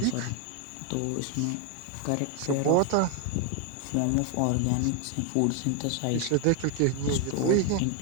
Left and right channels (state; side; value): different; both; correlation 0.01